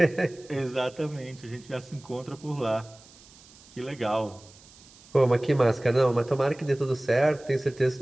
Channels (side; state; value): right; noise; hiss, 24 dB below the sound